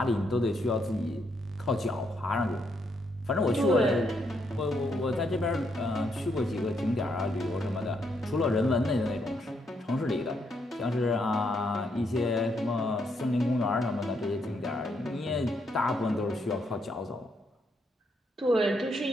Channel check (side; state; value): both; normal; correlation 0.76